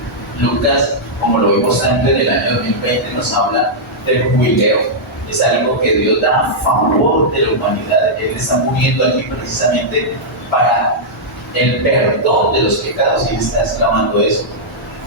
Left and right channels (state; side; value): normal; both; correlation -0.09